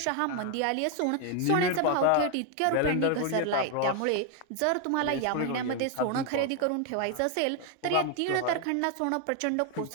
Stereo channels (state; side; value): different; both; correlation 0.01